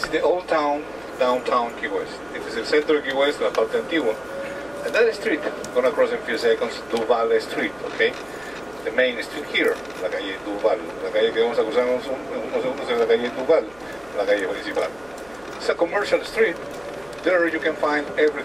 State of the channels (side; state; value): right; noise; hum, 26 dB below the sound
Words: is the old town, downtown Key West. This is el centro de Key West, la parte antigua. And that street, gonna cross in a few seconds, Duval Street, okay? The main street here, la calle Duval. La calle que vamos a cruzar unos segundos es la calle Duval, la calle principal. It's a commercial street. There you can find